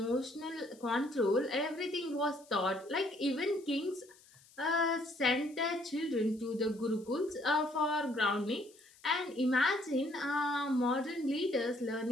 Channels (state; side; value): noise; left; hiss, 26 dB below the sound